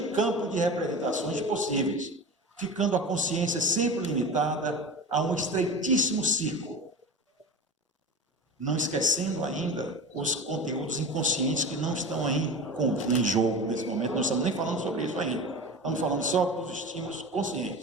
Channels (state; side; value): normal; both; correlation 0.30